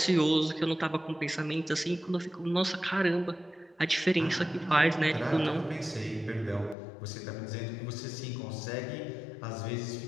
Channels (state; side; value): drops out; right; at 6.8 s